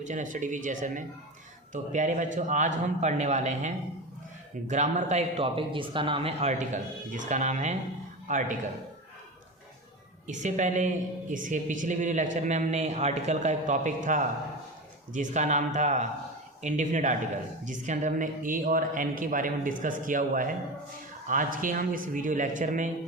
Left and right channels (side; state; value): both; normal; correlation 0.25